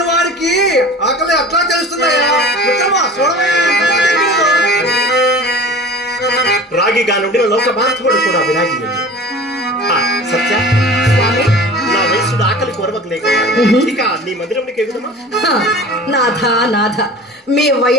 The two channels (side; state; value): both; normal; correlation 0.39